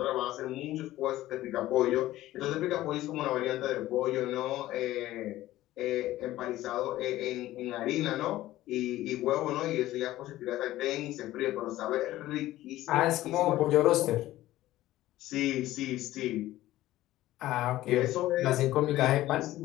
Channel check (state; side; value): quieter; right; 15.5 dB